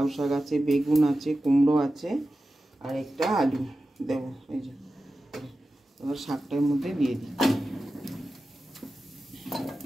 শাক আছে, বেগুন আছে, কুমড়ো আছে, আর একটা আলু দেবো। এই যে এবার শাকটার মধ্যে দিয়ে দিই।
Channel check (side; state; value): both; normal; correlation 0.94